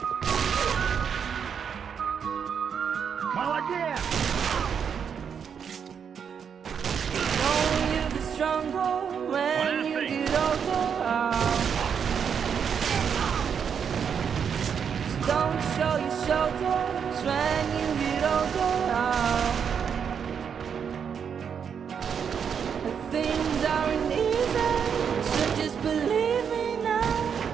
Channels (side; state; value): left; quieter; 7.2 dB